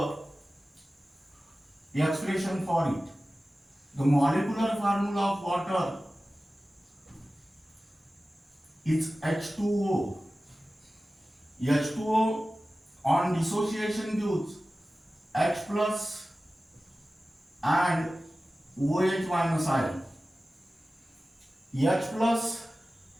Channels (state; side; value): normal; both; correlation 0.96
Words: the expression for it. The molecular formula of water is H2O. H2O on dissociation gives H plus and OH minus ion. H plus